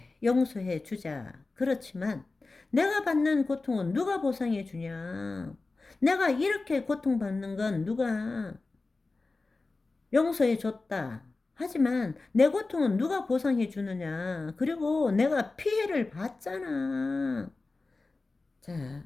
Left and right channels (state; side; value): quieter; right; 3.6 dB